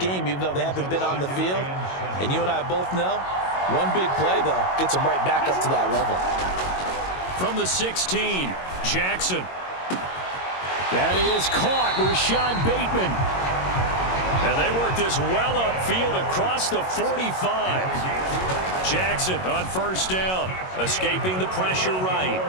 even though they haven't been on the field? And you and I both know, one big play, though, gets them right back up to that level. From the 16, Jackson. That is caught. Rashad Bateman. And they work this well upfield across the 45. Jackson on 1st down, escaping the pressure right.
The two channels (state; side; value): late; right; 22 ms